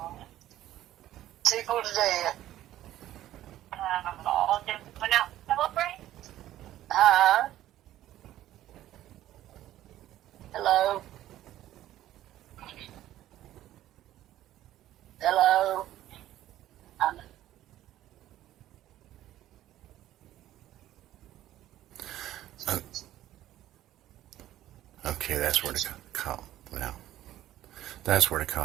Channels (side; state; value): left; quieter; 13.5 dB